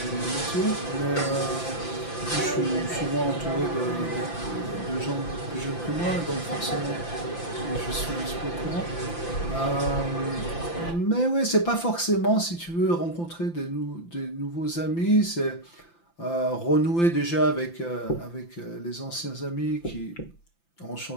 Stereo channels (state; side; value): late; right; 5.9 ms